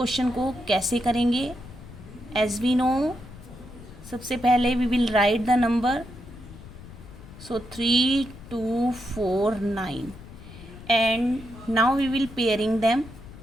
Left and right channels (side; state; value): left; noise; rumble, 17 dB below the sound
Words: को कैसे करेंगे। एज वी नो, सबसे पहले we will write the number, so 3, 2, 4, 9 and now we will pairing them.